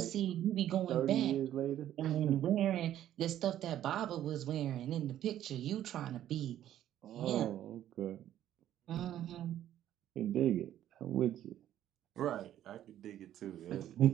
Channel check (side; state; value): left; quieter; 11.9 dB